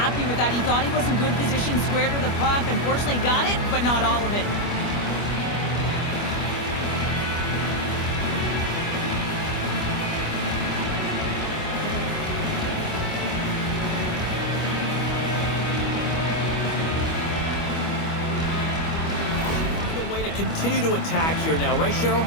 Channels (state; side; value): late; right; 25 ms